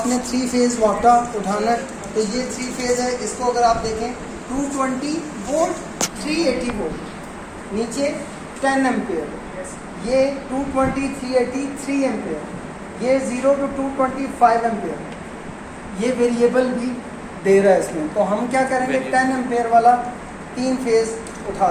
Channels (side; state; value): both; identical; correlation 1.00